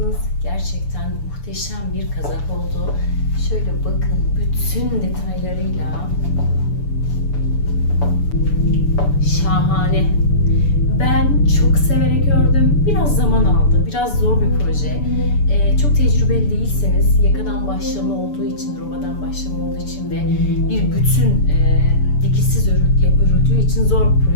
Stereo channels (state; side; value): late; right; 6.9 ms